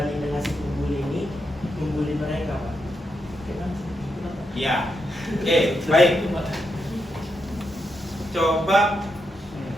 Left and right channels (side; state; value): both; normal; correlation 0.83